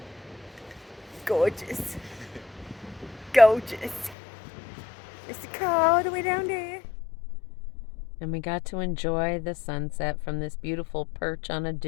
Gorgeous. Gorgeous. It's the car all the way down there. And we got to enjoy the sunset from this beautiful perch on a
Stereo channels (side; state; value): right; drops out; at 4.2 s